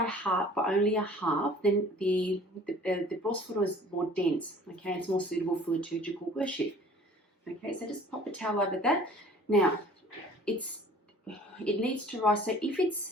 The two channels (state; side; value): normal; both; correlation 0.49